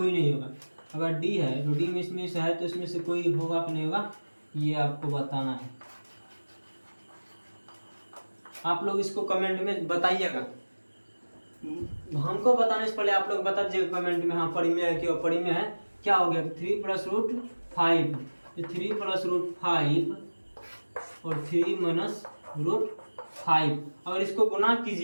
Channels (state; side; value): inverted; both; correlation -1.00